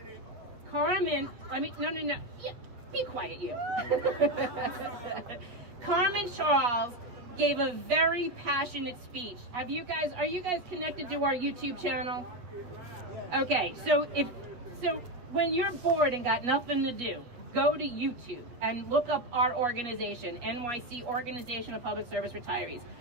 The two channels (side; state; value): left; late; 8.1 ms